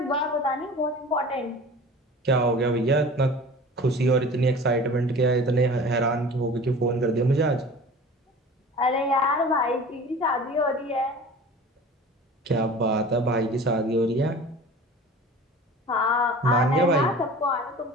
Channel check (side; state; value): both; normal; correlation 0.40